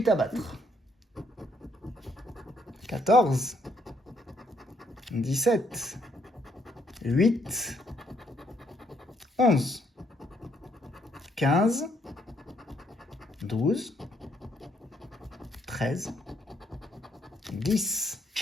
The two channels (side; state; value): both; normal; correlation 0.71